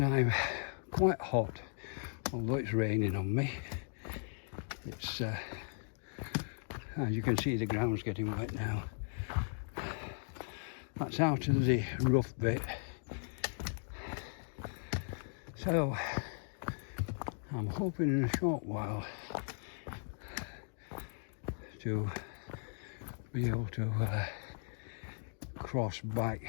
I'm quite hot, although it's raining on me. It's, as you can see, the ground's getting wet now. That's out of the rough bit. So I'm hoping in a short while to be able to cross back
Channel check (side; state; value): right; silent; digital silence